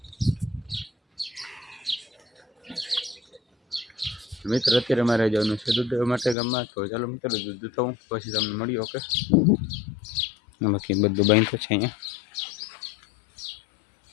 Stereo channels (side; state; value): right; drops out; at 6.4 s